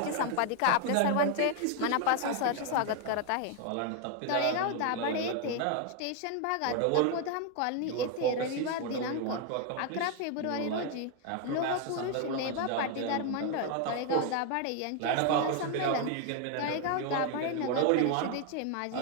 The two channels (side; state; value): both; different; correlation 0.01